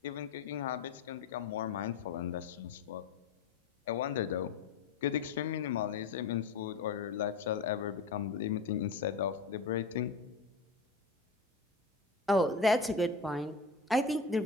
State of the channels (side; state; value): right; quieter; 4.1 dB